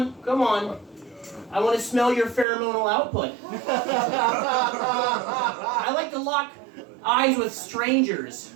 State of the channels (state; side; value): drops out; left; at 2.5 s